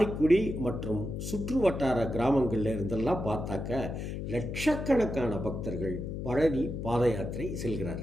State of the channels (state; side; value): noise; left; hum, 5 dB below the sound